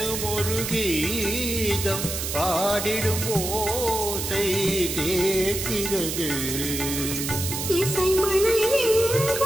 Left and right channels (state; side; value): noise; right; hiss, 4 dB below the sound